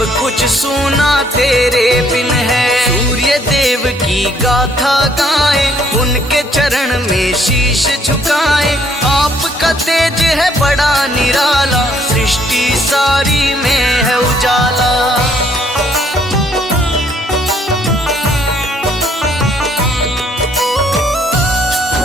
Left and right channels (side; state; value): both; normal; correlation 0.66